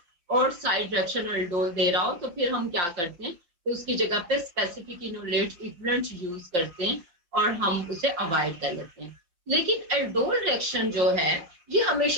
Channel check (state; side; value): late; left; 5.8 ms